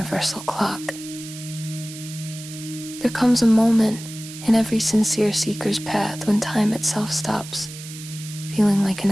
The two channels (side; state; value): right; noise; hiss, 13 dB below the sound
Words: clock. There comes a moment in every sincere seeker's path when time itself stops feeling like an